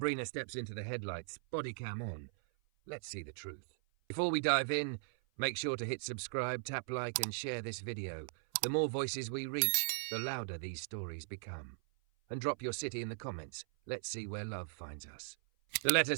steps into the headlights, body cam on. Let's see the truth. Before we dive in, make sure to hit subscribe, tap like, and share this video. The more voices we reach, the louder these stories become. And drop your city in the comments. Let's see where love finds us. The letter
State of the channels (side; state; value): left; silent; 52 dB below the other